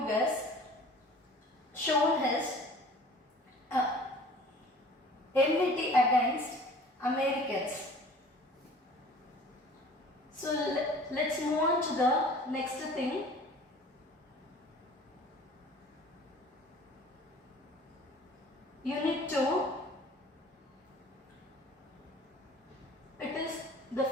shown his enmity against Americans. So let's move on to the next thing. Unit 2, it is the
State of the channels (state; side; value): normal; both; correlation 0.47